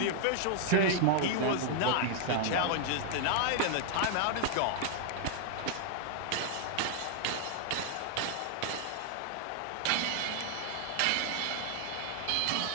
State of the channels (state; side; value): different; both; correlation 0.00